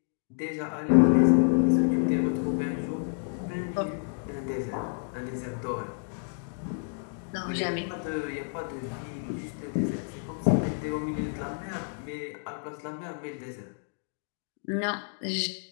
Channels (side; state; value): right; silent; digital silence